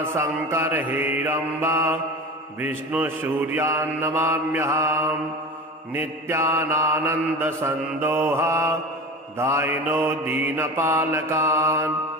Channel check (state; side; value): normal; both; correlation 0.33